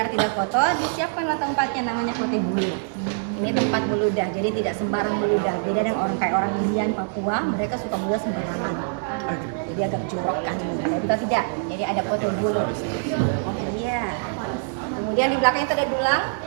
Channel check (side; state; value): left; silent; 59 dB below the other